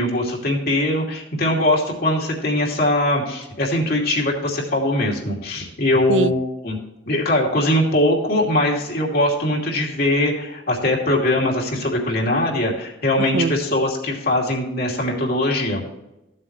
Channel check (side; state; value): both; normal; correlation 0.17